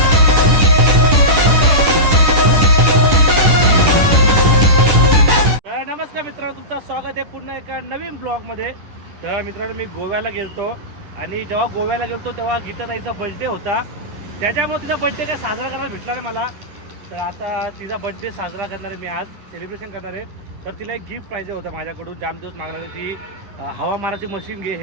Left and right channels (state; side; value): late; left; 10 ms